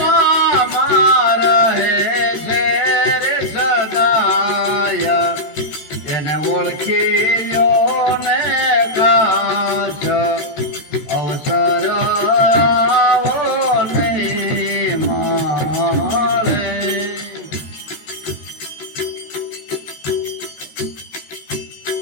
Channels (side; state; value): right; late; 14 ms